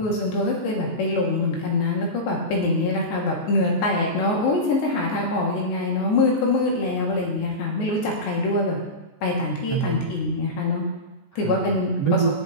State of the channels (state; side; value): late; right; 14 ms